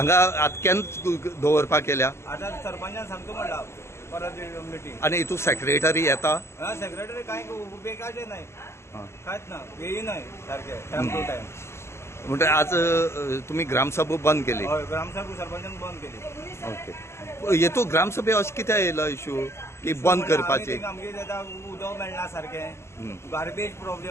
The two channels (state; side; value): late; right; 0.13 ms